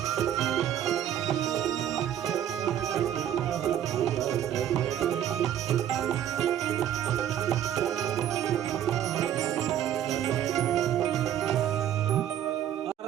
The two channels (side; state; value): left; quieter; 10.6 dB